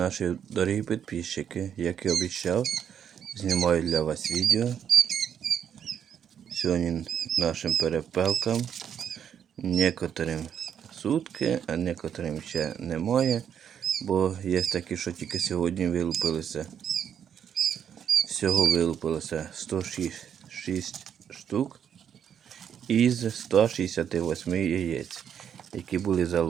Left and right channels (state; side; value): quieter; left; 8.5 dB